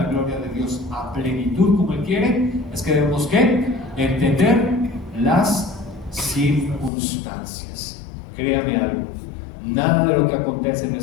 gloria de Dios a plenitud como Él quiere, es que debemos que entender las circunstancias. Créame algo, nada de lo que acontece en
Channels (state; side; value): drops out; right; at 6.9 s